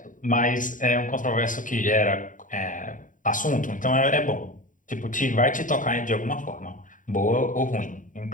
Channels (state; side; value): late; right; 0.38 ms